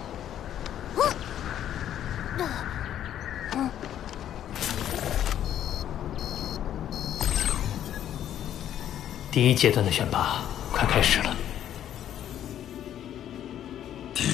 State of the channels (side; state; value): right; quieter; 10.8 dB